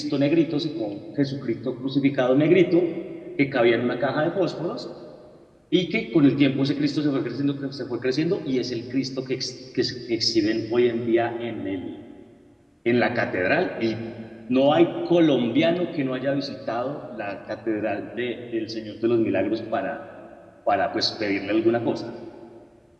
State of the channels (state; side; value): identical; both; correlation 1.00